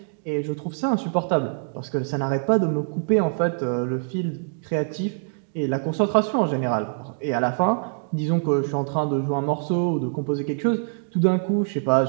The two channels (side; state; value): left; silent; digital silence